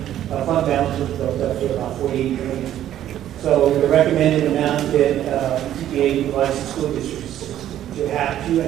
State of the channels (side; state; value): left; quieter; 11.7 dB